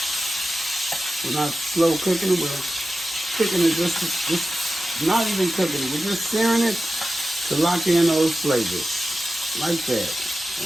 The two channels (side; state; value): both; normal; correlation 0.94